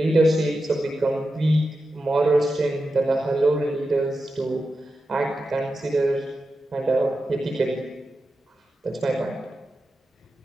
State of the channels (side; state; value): both; normal; correlation 0.90